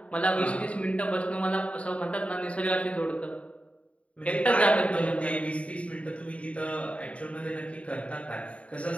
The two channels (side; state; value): right; late; 0.064 ms